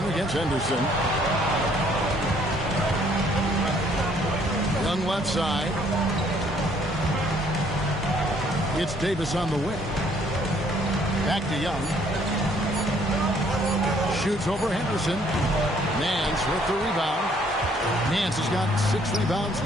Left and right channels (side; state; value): both; normal; correlation 0.63